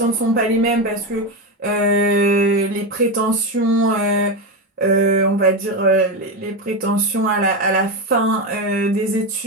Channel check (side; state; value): both; normal; correlation 0.13